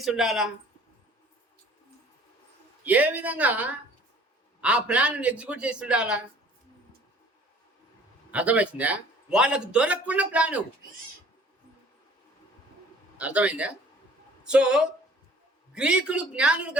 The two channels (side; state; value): both; normal; correlation 0.52